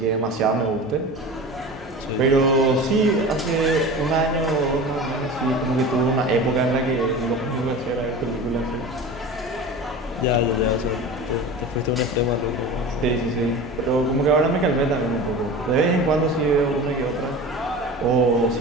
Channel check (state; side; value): normal; both; correlation 0.34